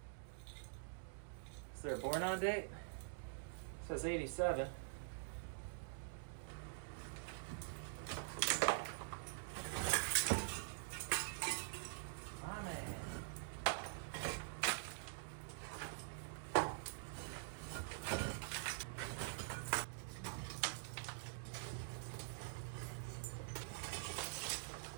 Is there a born on date? It says 87. My man.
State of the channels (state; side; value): silent; left; digital silence